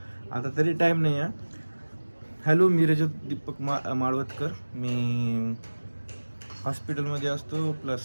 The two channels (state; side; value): inverted; both; correlation -1.00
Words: आता तरी टाईम नाही आहे. हॅलो, मी रजत दीपक माळवतकर. मी हॉस्पिटलमध्ये असतो,